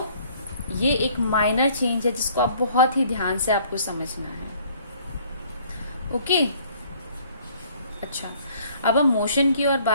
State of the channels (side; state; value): both; inverted; correlation -0.57